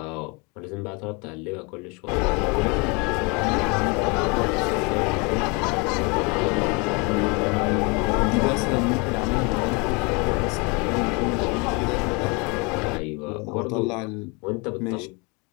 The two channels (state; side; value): quieter; right; 29.9 dB